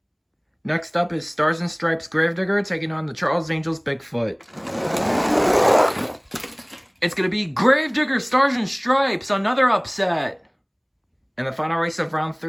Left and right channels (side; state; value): both; identical; correlation 1.00